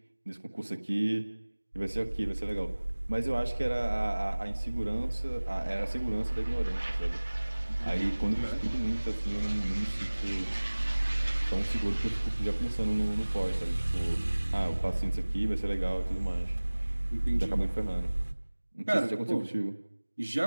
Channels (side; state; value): both; inverted; correlation -1.00